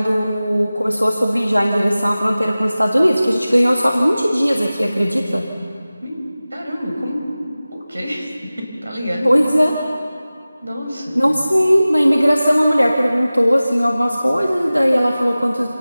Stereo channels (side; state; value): both; inverted; correlation -0.97